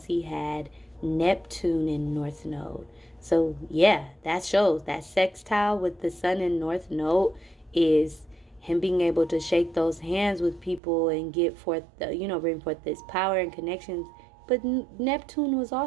he had Neptune in North Node. So, yeah, that shows that sextile with the sun in North Node is him being able to shake those hands with people and get forth, bring forth this power and connections. But Neptune was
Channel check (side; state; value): left; drops out; at 10.8 s